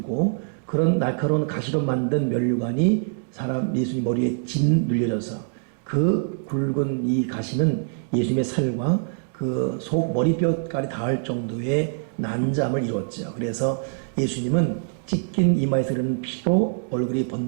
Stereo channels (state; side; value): silent; left; digital silence